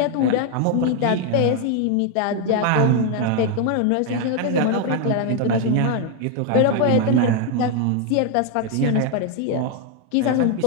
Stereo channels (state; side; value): different; both; correlation 0.01